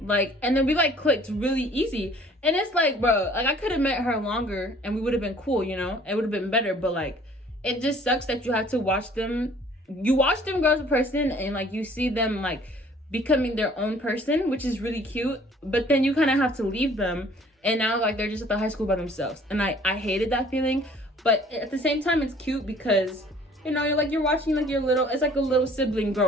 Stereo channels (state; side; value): normal; both; correlation 0.54